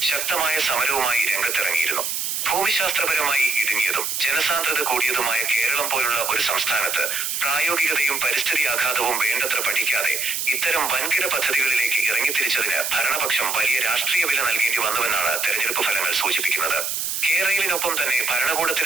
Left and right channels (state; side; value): noise; right; hiss, 2 dB below the sound